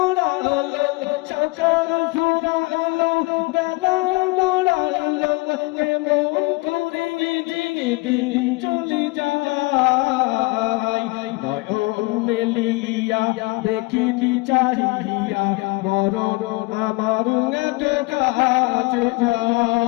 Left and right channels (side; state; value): right; quieter; 24.6 dB